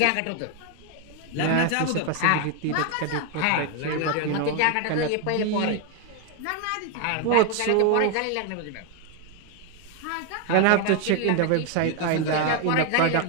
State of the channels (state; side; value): different; both; correlation 0.01